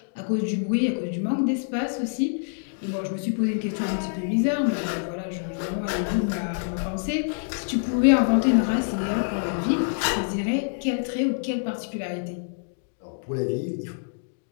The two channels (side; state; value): right; silent; digital silence